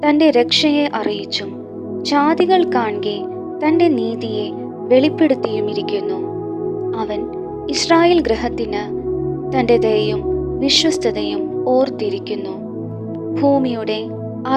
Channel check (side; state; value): both; identical; correlation 1.00